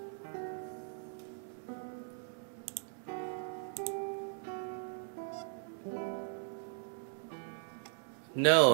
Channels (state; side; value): silent; left; 52 dB below the other